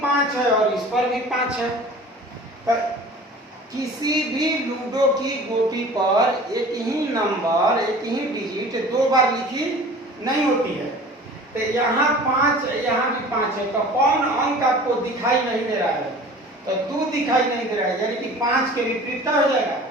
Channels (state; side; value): normal; both; correlation 0.43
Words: 5 है और इस पर भी 5 है। तो किसी भी लूडो की गोटी पर एक ही नंबर, एक ही डिजिट 2 बार लिखी नहीं होती है। तो यहाँ 5, यहाँ भी 5 है, तो कौन अंक आपको दिखाई नहीं दे रहा है? तो 2 दिखाई नहीं दे रहा है, यानी कि 5 के विपरीत क्या हो जाएगा?